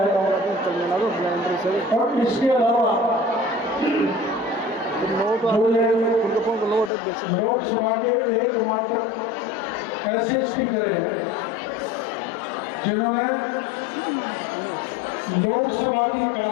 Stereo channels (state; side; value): drops out; right; at 6.9 s